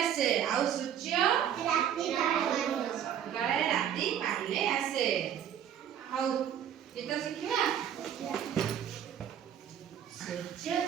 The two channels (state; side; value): quieter; left; 9.4 dB